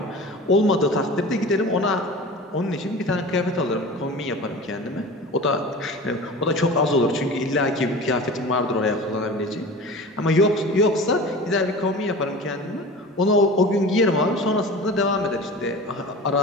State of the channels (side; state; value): both; normal; correlation 0.36